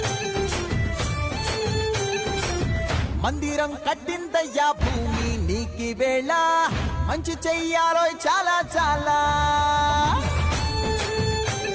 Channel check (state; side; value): identical; both; correlation 1.00